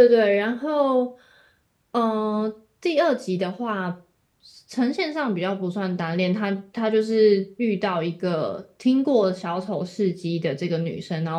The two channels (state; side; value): identical; both; correlation 1.00